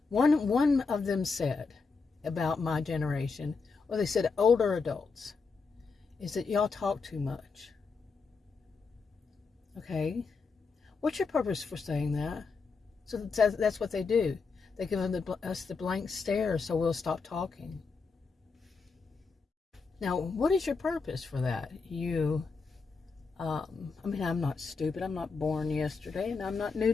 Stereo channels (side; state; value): right; quieter; 4.7 dB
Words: One of them said about my generation, or they said older adults, is that y'all talk too much. Okay? What's your purpose for saying that? So that's what they do. They give us the blank stare so we'll stop talking. Now, what is your purpose for that? I mean, I'm not stupid. I'm not born yesterday, and I'm not new